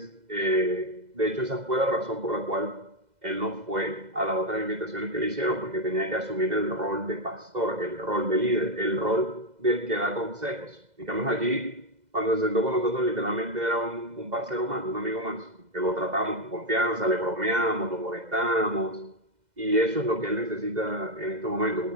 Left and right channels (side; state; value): left; late; 2.0 ms